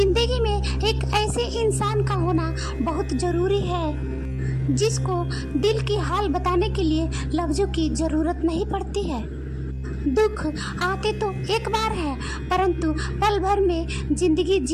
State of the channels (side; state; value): both; identical; correlation 1.00